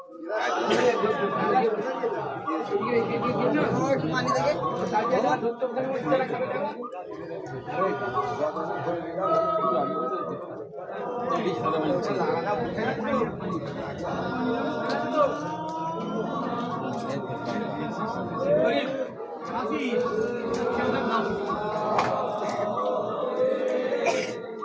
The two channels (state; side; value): identical; both; correlation 1.00